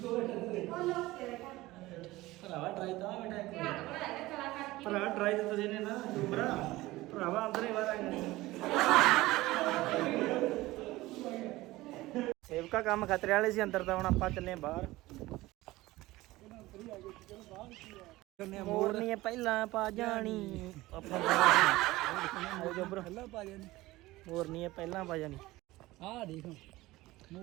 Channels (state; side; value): quieter; left; 18.6 dB